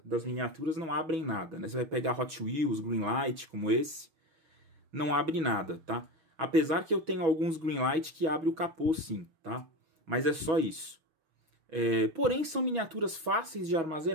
das miniaturas não abrem nada, né? Você vai pegar Hot Wheels, Greenlight, como esse, não abre nada, tá? Apesar que eu tenho alguns Greenlight que abre o capô sim, tá? Mas é só isso. Porém são miniaturas fáceis de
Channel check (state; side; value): late; left; 6.2 ms